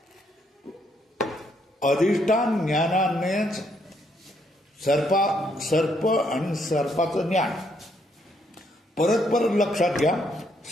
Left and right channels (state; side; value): normal; both; correlation 0.72